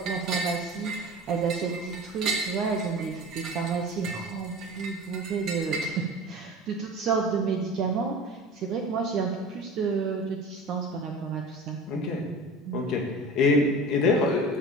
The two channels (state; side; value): normal; both; correlation 0.36